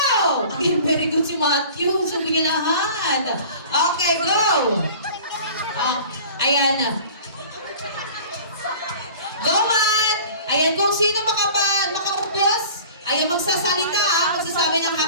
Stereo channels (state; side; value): inverted; both; correlation -0.43